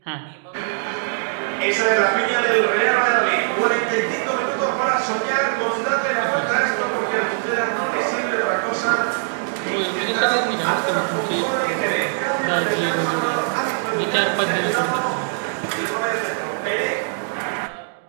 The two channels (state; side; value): silent; left; digital silence